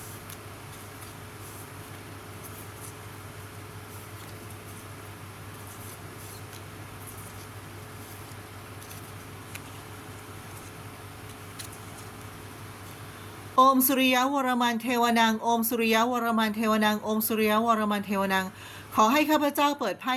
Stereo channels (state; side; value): identical; both; correlation 1.00